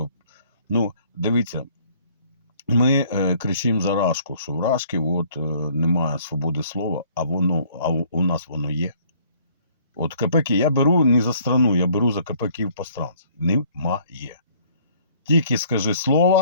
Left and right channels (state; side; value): inverted; both; correlation -0.59